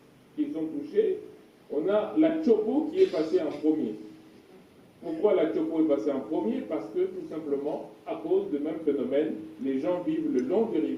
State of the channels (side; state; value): both; identical; correlation 1.00